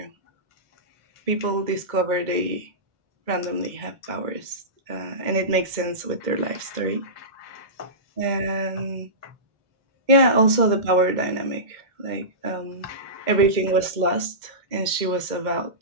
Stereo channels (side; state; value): left; late; 2.1 ms